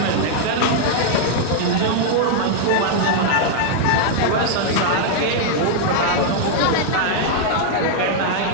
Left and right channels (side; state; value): both; different; correlation -0.01